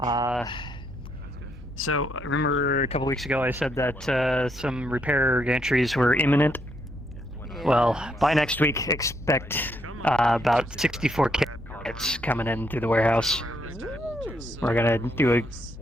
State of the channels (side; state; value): both; normal; correlation 0.75